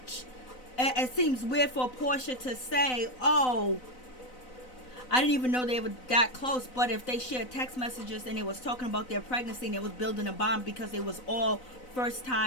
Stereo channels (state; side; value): late; right; 4.0 ms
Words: it seems weird for Porsha to say, oh, I didn't even know they were that close. But if they shared text messages and they was talking about their pregnancy and they was building a bond because they was all first